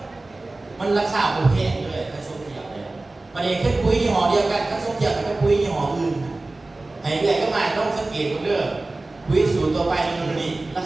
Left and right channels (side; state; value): left; quieter; 3.0 dB